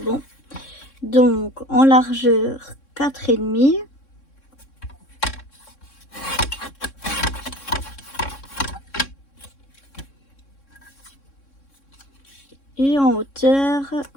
bon. Donc en largeur 4,5. Et en hauteur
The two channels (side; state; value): right; late; 3.6 ms